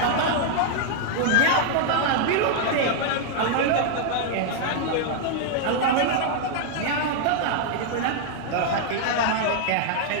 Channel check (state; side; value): different; both; correlation 0.00